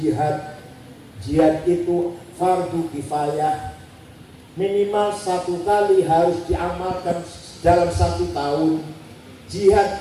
Jihad itu fardu kifayah, minimal 1 kali harus diamalkan dalam 1 tahun.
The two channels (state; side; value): identical; both; correlation 1.00